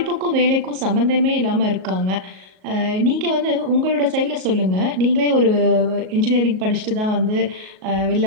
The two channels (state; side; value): late; left; 38 ms